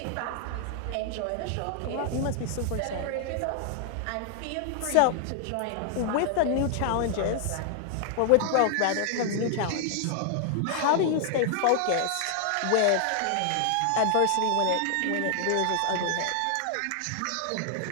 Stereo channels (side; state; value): both; different; correlation 0.00